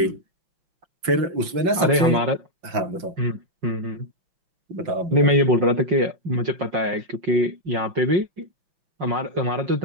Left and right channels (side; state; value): left; late; 5.8 ms